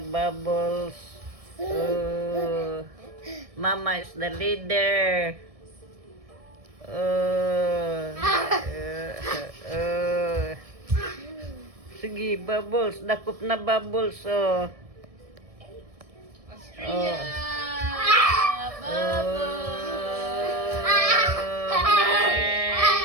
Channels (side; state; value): left; late; 1.7 ms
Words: bubbles. Oh. Mama is the leader. Oh. Sige, bubbles. Dakop na bubbles, oh. Australia!